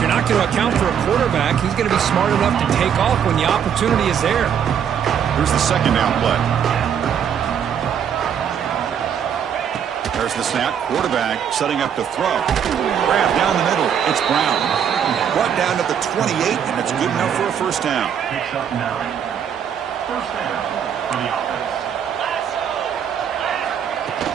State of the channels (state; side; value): quieter; left; 8.3 dB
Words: not going to account for a quarterback, he's going to be smart enough to take off when the opportunity is there. Here's the second down play. There's the snap. Quarterback setting up to throw. Grab down the middle. It's Brown. Brought down to the 28, and it's good enough for a first down. Picks up 9. First down for the offense.